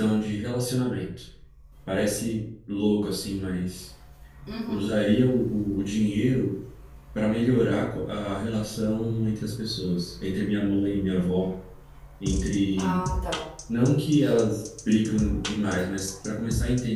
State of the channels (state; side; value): identical; both; correlation 1.00